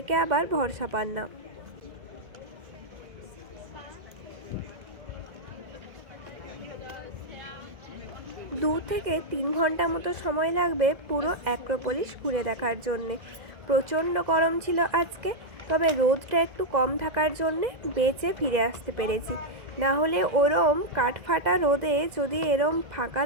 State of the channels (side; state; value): left; late; 2.0 ms